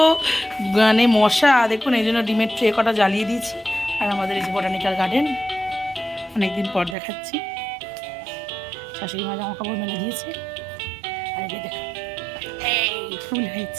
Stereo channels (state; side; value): drops out; left; at 7.0 s